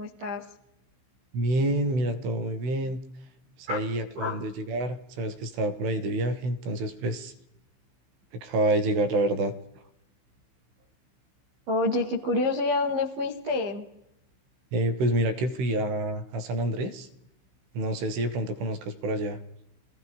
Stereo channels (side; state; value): left; late; 16 ms